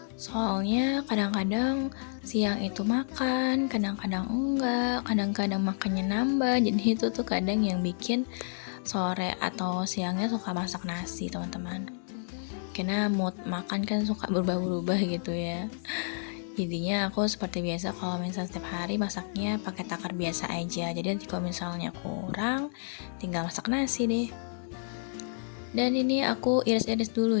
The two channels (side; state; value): right; silent; 58 dB below the other